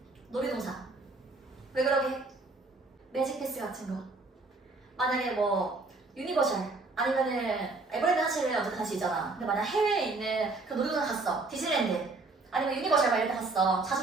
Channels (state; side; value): quieter; left; 3.5 dB